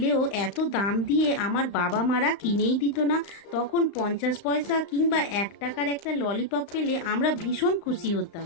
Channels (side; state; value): right; late; 35 ms